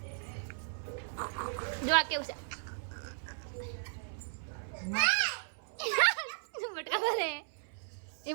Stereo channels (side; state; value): left; silent; 54 dB below the other